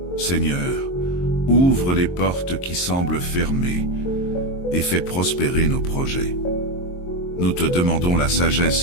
Seigneur, ouvre les portes qui semblent fermées et fais prospérer nos projets. Nous te demandons la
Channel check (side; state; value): right; late; 22 ms